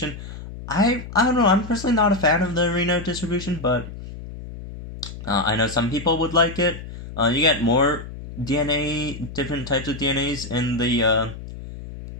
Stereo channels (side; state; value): left; noise; hum, 12 dB below the sound